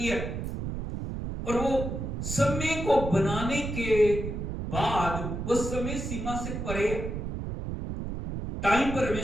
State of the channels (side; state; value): right; noise; rumble, 5 dB below the sound